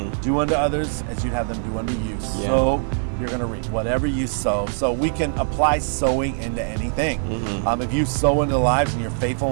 Do unto others as you'd have them do unto you. Yeah. So you're going to reap whatever you sow. So we can apply sowing into anything. If you sow into lives and you're faithful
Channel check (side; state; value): left; silent; digital silence